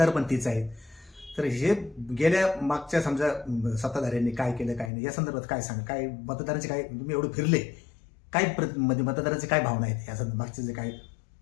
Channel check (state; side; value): drops out; right; at 4.9 s